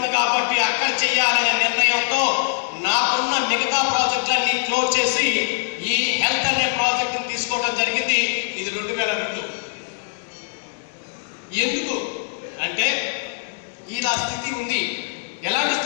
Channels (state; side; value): silent; right; digital silence